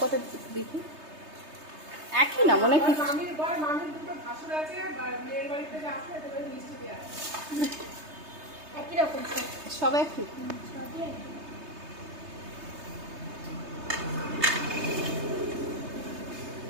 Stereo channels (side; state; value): left; late; 3.3 ms